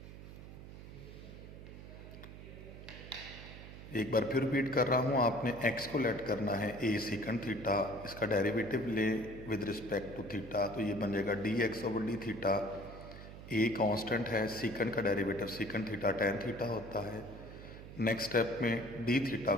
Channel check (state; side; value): noise; right; hum, 13 dB below the sound